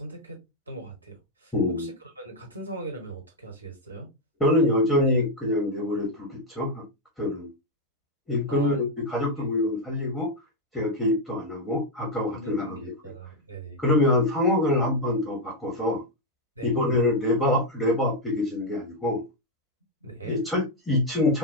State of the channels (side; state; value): both; normal; correlation 0.01